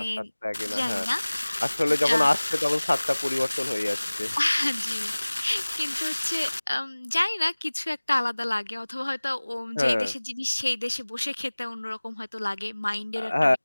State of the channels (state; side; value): inverted; both; correlation -1.00